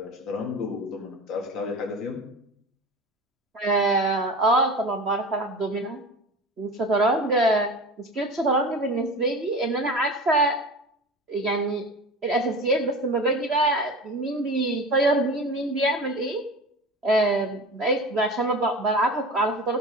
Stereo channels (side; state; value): both; normal; correlation 0.32